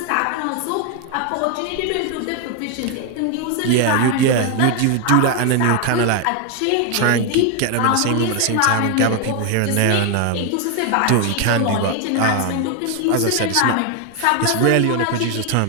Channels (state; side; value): different; both; correlation 0.01